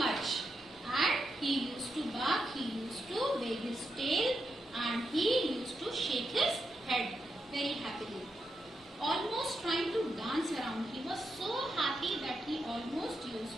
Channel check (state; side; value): normal; both; correlation 0.85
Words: and he used to bark, he used to wag his tail, and he used to shake his head very happily, almost trying to dance around. He was so happy that he almost